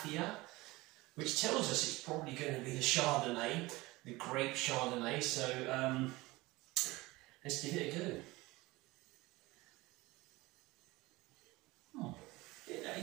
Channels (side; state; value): left; quieter; 20.9 dB